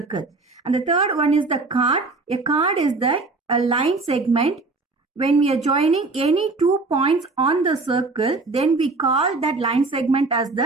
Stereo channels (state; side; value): quieter; left; 3.6 dB